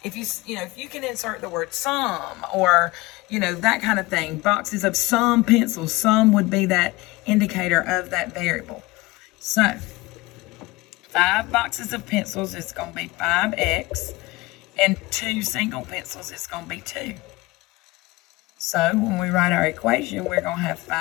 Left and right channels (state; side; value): quieter; right; 21.4 dB